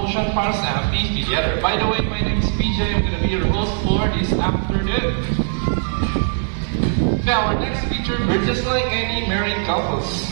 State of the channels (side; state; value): left; silent; digital silence